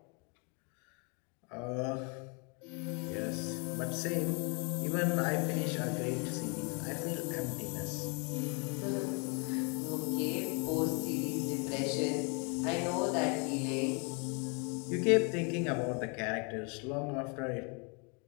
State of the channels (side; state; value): right; quieter; 34.5 dB